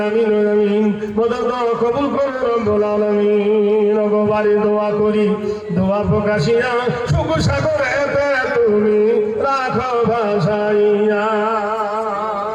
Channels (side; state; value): both; identical; correlation 1.00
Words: আমিন আমিন। মদদ কবুল করে রব্বুল আলামিন। গো বাড়ি দোয়া করি, দোয়া প্রকাশিয়া সুখ সাগরেতে তুমি রাখো ভাসাইয়া।